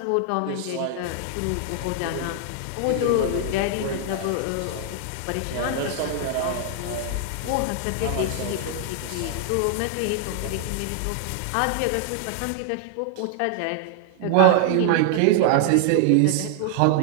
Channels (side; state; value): both; different; correlation 0.00